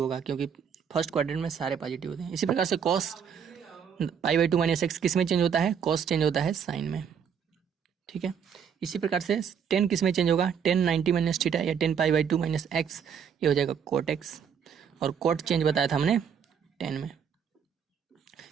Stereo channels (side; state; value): left; quieter; 7.4 dB